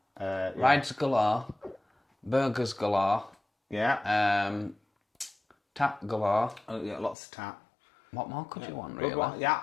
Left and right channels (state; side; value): drops out; right; at 7.2 s